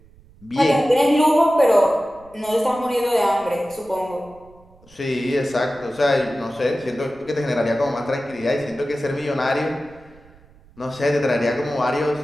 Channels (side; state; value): right; noise; rumble, 26 dB below the sound